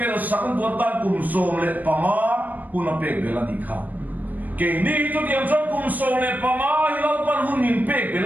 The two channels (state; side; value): late; left; 0.083 ms